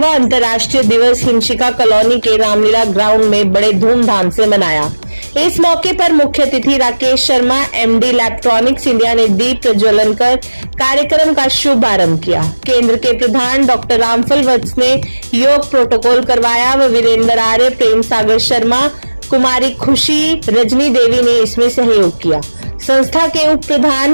अंतर्राष्ट्रीय दिवस हिमशिका कॉलोनी के रामलीला ग्राउंड में बड़े धूमधाम से मनाया। इस मौके पर मुख्य अतिथि Rakesh Sharma MD electronics India ने दीप प्रज्वलन कर कार्यक्रम का शुभारंभ किया। केंद्र के प्रधान डॉक्टर रामफल वत्स ने योग प्रोटोकॉल करवाया व वीरेंद्र आर्य, प्रेम सागर शर्मा, कुमारी खुशी, रजनी देवी ने इसमें सहयोग किया। संस्था के उप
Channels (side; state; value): both; inverted; correlation -1.00